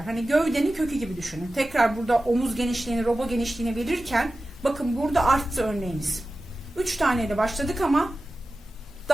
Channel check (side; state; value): both; normal; correlation 0.95